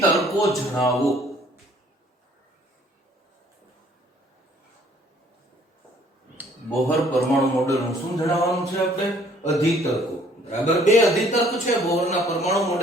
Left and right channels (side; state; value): both; normal; correlation 0.59